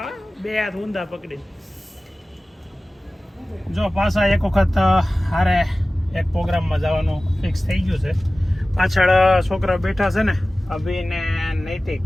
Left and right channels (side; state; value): both; normal; correlation 0.97